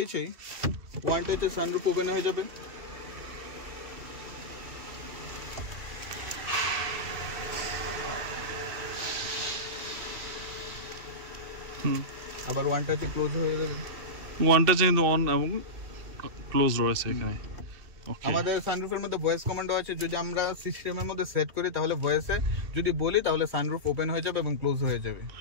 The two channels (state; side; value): late; left; 2.7 ms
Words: ওয়ানটা হচ্ছে সানরুফ ওপেন হয়ে যাবে। আবার ওয়ানটা হচ্ছে ক্লোজ হয়ে যাবে। ওয়ানটা কিন্তু অন এবং ক্লোজ রয়েছে এখানে। আমাদের সানরুফের মধ্যে ভয়েস কমান্ড আছে, যদি আমরা সিস্টেমের মধ্যে সেট করি তাহলে ভয়েসে যদি বলি তাহলে সানরুফ ওপেন হয়ে যাবে এবং ক্লোজ হয়ে যাবে।